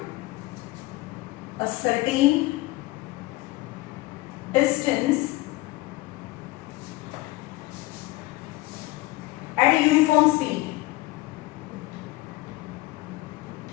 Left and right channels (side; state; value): right; quieter; 19.4 dB